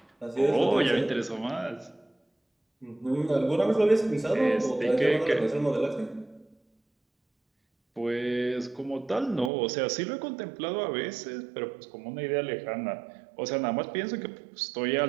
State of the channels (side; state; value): left; drops out; at 9.5 s